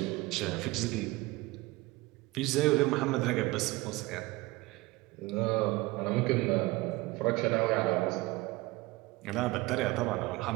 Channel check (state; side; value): quieter; left; 21.2 dB